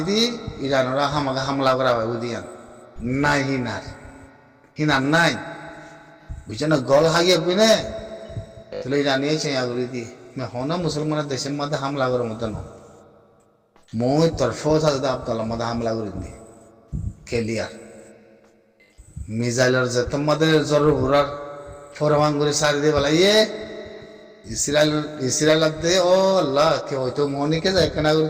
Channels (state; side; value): identical; both; correlation 1.00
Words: দি ইরানরা হামাকে হামলা করা হয় বুঝিয়ান নাই হিনার নাই বুঝছো না গল হাগিয়ে পিনে তাহলে ইরানিয়ে চেয়া করে দি হন মুসলমানের দেশের মধ্যে হামলা করার মতো ন মই তোর ফৌজ হাজদা আব্দুল্লাহ মধ্যে হামলা করে দি কেলিয়ার মিসাইলের যে তোমাদের জরুর ঘোরার ফরমান করে সারি দিয়ে বলাইয়ে ইসরায়েল দে ও আল্লাহ কে হয়তো মনিকে যায় কেনা